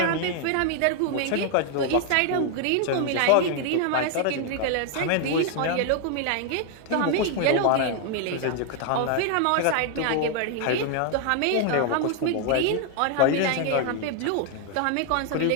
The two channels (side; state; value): both; different; correlation 0.00